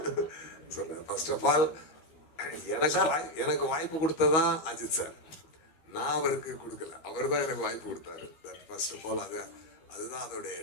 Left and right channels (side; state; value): right; late; 13 ms